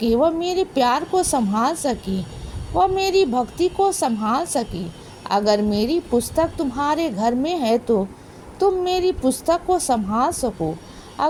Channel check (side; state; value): both; identical; correlation 1.00